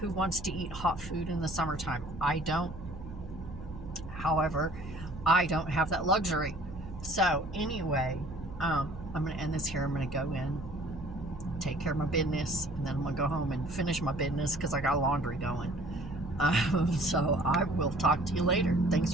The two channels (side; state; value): right; noise; hum, 13 dB below the sound